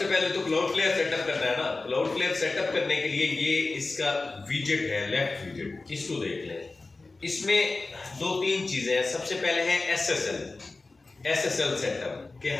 पहले तो क्लाउडफ्लेयर सेटअप करना है ना। क्लाउडफ्लेयर सेटअप करने के लिए ये इसका विजेट है, लेफ्ट विजेट, इसको देख लें। इसमें 2-3 चीजें हैं। सबसे पहले है SSL सेटअप, कि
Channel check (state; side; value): quieter; right; 3.5 dB